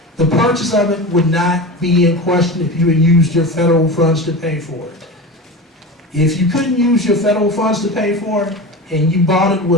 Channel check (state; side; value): normal; both; correlation 0.28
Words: the purchase of it would not be in question if you had used your federal funds to pay for it. If you couldn't use your federal funds to pay for it and you bought it